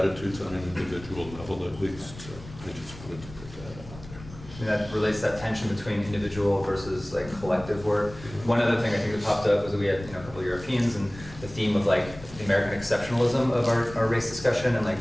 on an individual level at least. So I just wanted to put that out there. I mean, that relates to that tension between individual versus like collective work. One other thing I think that popped up was that we had, you know, a couple of Europeans, and the theme of like the American exceptionalism of our race discussion and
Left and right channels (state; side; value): noise; left; rumble, 16 dB below the sound